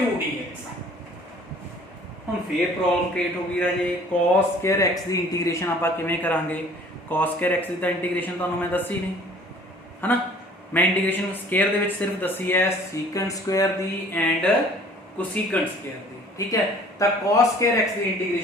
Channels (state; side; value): normal; both; correlation 0.52